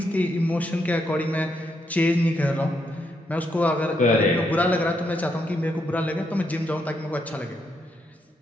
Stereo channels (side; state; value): both; normal; correlation 0.78